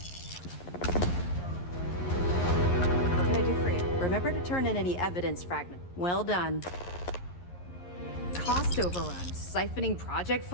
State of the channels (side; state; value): right; late; 11 ms